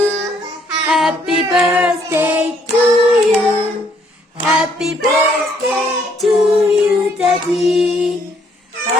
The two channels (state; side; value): normal; both; correlation 0.67